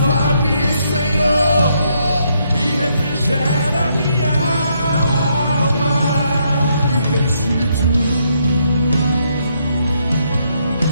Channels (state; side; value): inverted; both; correlation -0.75